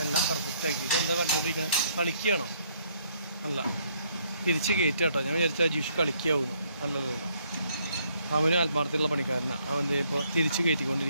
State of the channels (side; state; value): both; inverted; correlation -0.68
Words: എല്ലാം പെർഫെക്റ്റ് ആക്കിയിട്ട് എന്താ പറഞ്ഞുകൊണ്ടിരിക്കുന്നത് കളിക്കുകയാണോ അല്ല തിരിച്ച് കയറ്റാട്ടോ ഞാൻ വിചാരിച്ച അജീഷ് കളിക്കാവുന്നു നല്ലതല്ല അവന് ആത്മാർത്ഥമുള്ള പണിക്കാരനാണ് അവൻ ഇപ്പോൾ തിരിച്ച്